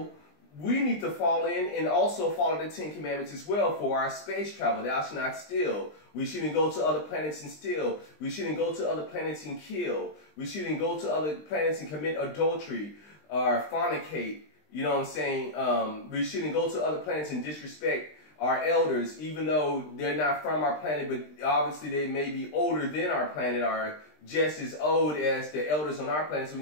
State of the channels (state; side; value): late; right; 20 ms